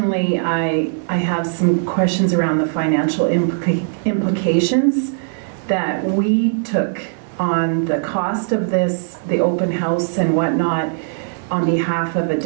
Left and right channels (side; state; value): left; silent; digital silence